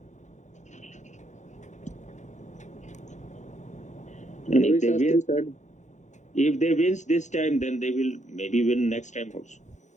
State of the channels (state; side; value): late; right; 0.35 ms